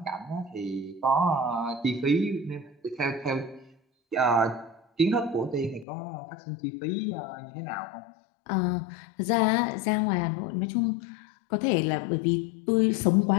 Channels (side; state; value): right; drops out; at 5.9 s